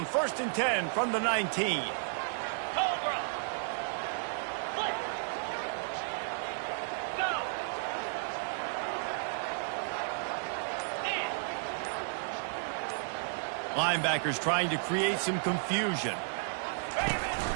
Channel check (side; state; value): left; silent; digital silence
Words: 1st and 10 from the 19. Cobra. Flip. Go. In. Linebackers trying to create some confusion. Ready, ready.